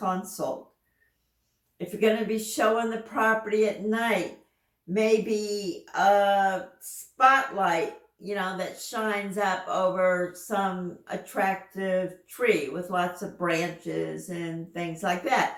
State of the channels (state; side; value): identical; both; correlation 1.00